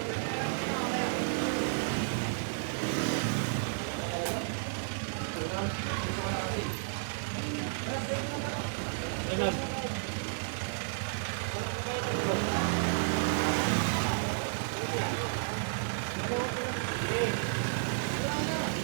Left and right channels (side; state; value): left; silent; digital silence